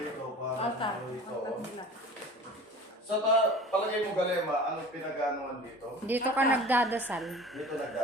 para rito. Sa palagay mo Galema, anong pinag-anuan dito? Dito ka nagdadasal. Dito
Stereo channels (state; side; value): normal; both; correlation 0.42